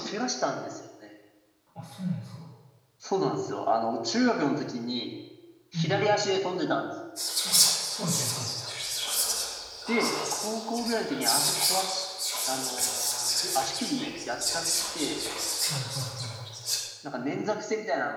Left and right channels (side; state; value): both; identical; correlation 1.00